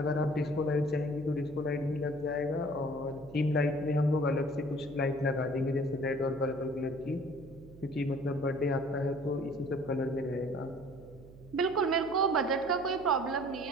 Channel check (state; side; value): noise; right; hum, 19 dB below the sound